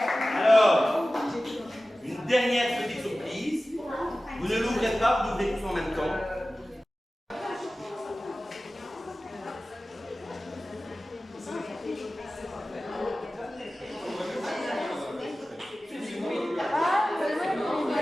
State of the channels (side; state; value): both; normal; correlation 0.96